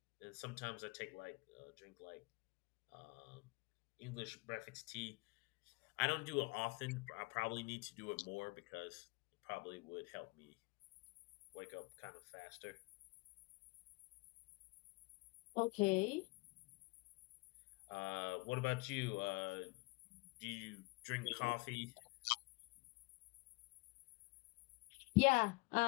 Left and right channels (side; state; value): right; quieter; 27.1 dB